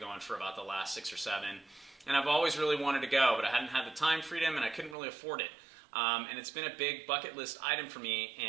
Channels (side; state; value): left; drops out; at 5.0 s